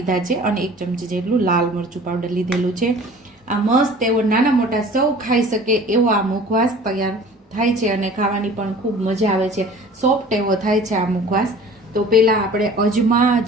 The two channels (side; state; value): both; normal; correlation 0.45